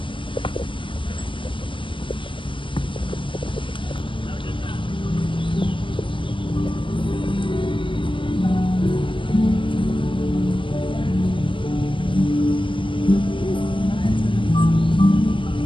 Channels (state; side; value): late; right; 0.25 ms